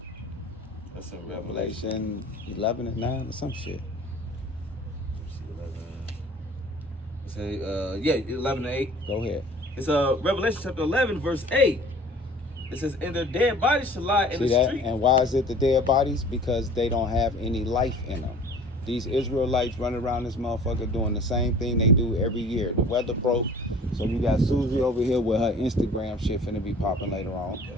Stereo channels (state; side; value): normal; both; correlation 0.47